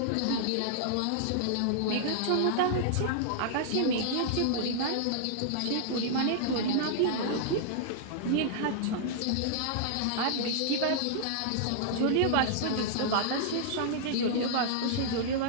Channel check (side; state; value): both; different; correlation -0.01